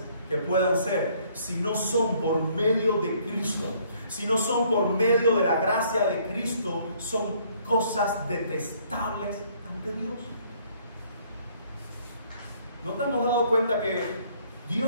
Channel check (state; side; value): inverted; both; correlation -0.63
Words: que puedan ser, si no son por medio de Cristo, si no son por medio de la gracia de Cristo, son cosas detestables ante Dios. ¿No te hemos dado cuenta que